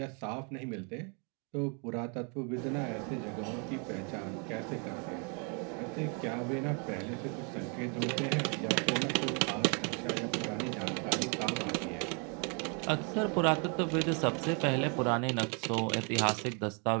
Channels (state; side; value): quieter; left; 37.0 dB